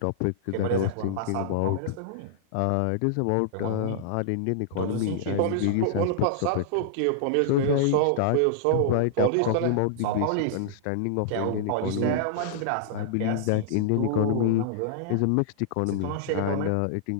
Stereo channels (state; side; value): different; both; correlation -0.01